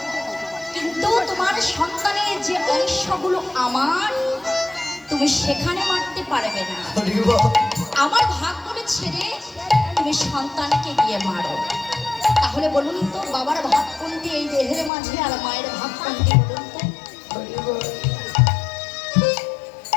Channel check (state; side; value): drops out; right; at 14.9 s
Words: কিন্তু তোমার সন্তানের যে অংশগুলো আমার, তুমি সেখানে মারতে পারবে না। আমার ভাগগুলো ছেড়ে তুমি সন্তানকে গিয়ে মারো। তাহলে বলুন তো, বাবার ভাগ কোনটি এই দেহের মাঝে, আর মায়ের ভাগ কোনটি বলুন তো?